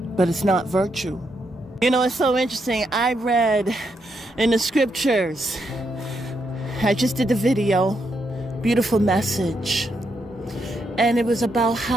But it's not virtue. You know, it's so interesting. I read in the scriptures, I just did the video, beautiful message. And it was about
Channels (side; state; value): both; normal; correlation 0.80